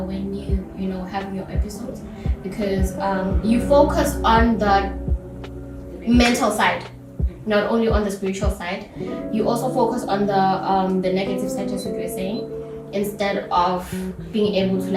you have your episodes, because you focus on the mental side, not only on the spiritual side. You also focus on the negative side, just what you were saying, instead of being able to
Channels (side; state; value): both; identical; correlation 1.00